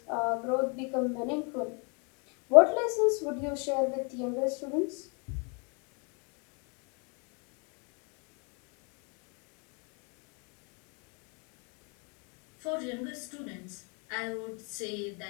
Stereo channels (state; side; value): quieter; right; 34.8 dB